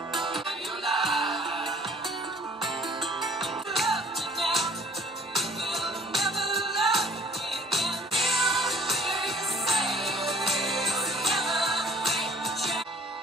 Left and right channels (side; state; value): both; normal; correlation 0.54